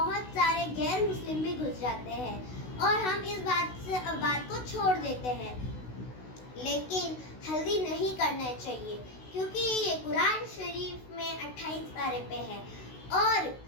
सारे गैर मुस्लिम भी घुस जाते हैं और हम इस बात को छोड़ देते हैं। लेकिन हल्दी नहीं करना चाहिए क्योंकि ये कुरान शरीफ में 28 पारे पे है। और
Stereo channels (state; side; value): late; right; 16 ms